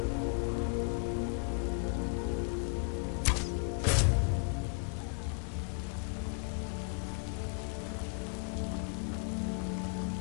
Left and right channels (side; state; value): right; quieter; 39.8 dB